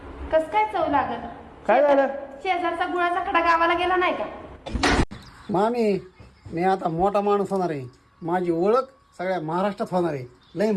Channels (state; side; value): identical; both; correlation 1.00